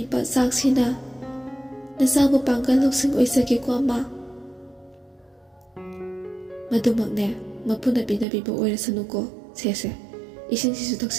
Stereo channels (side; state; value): left; drops out; at 8.2 s